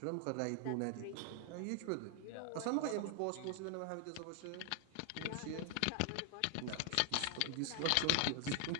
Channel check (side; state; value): both; different; correlation 0.00